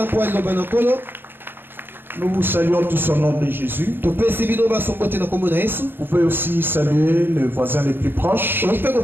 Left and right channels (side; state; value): left; late; 0.10 ms